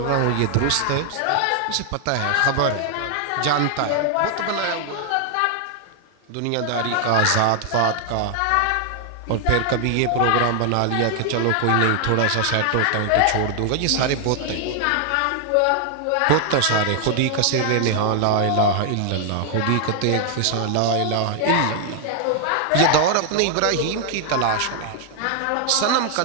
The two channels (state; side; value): different; both; correlation 0.00